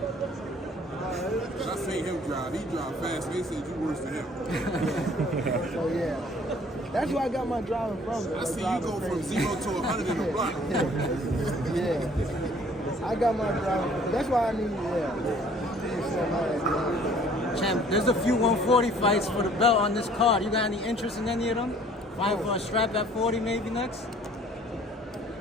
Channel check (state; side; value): normal; both; correlation 0.55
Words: I seen him drive. He drive fast. They said you worse than him. So yeah, that's where I got my driving from. I see you go from 0 to 100 in a block. Yeah, I got my driving. That's why I need Champ, there's a few 140 fights for the belt on this card. You got any interest in any of them? Fighting for a strap at 40 maybe next?